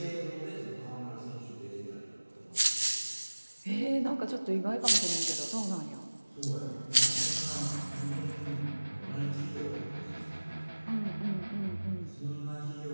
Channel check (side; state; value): both; inverted; correlation -1.00